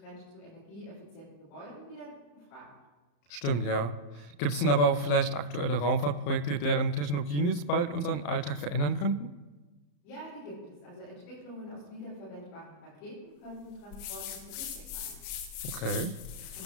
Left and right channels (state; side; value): late; right; 34 ms